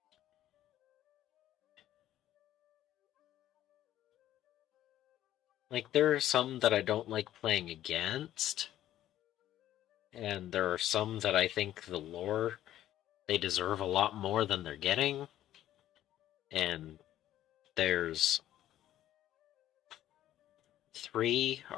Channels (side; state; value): right; quieter; 12.7 dB